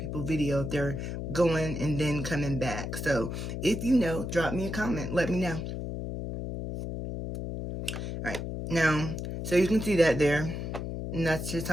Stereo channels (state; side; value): noise; left; hum, 5 dB below the sound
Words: video if they're going and then coming back. So, if you know, drop me a comment. Let me know. Alright, now, so you can see that there. And that's just